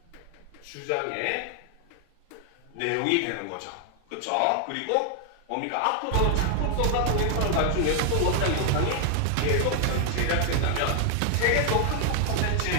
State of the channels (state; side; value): different; both; correlation 0.00